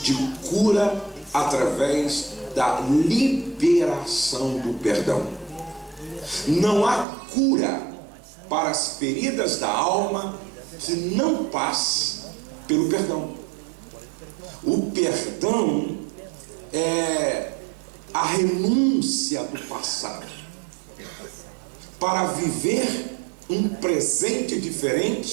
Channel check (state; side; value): drops out; left; at 7.1 s